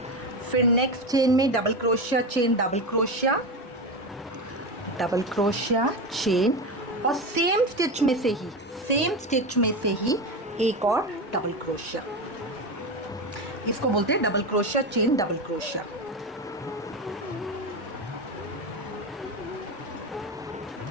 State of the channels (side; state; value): both; normal; correlation 0.18